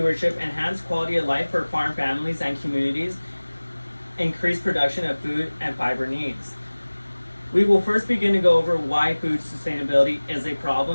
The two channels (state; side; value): inverted; both; correlation -1.00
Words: enhance quality of life for farm families and communities, increase production of food and fiber needs. We will first begin to go over why food sustainability is a